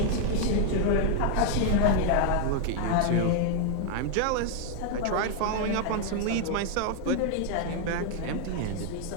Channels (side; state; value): both; different; correlation 0.00